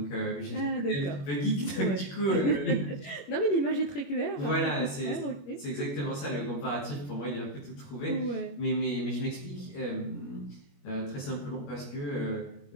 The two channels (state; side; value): late; right; 21 ms